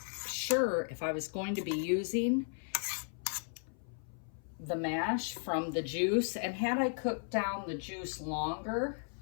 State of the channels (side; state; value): right; silent; 54 dB below the other